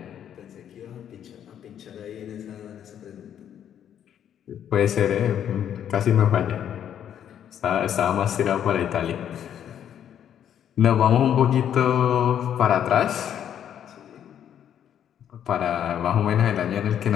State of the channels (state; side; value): quieter; right; 9.6 dB